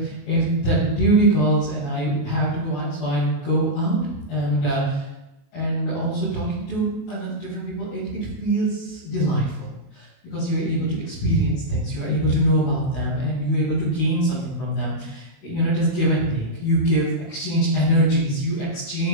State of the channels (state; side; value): late; right; 29 ms